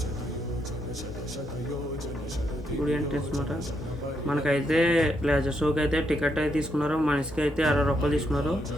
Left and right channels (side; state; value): both; normal; correlation 0.78